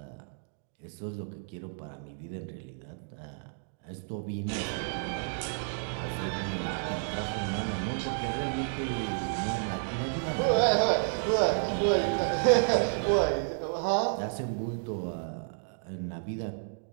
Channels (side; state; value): left; silent; digital silence